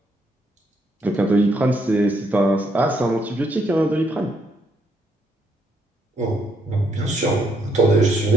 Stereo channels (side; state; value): both; normal; correlation 0.74